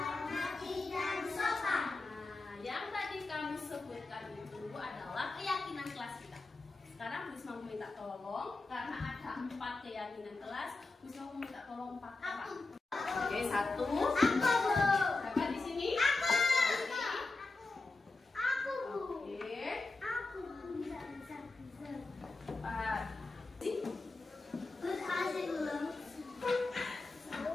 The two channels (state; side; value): quieter; right; 3.4 dB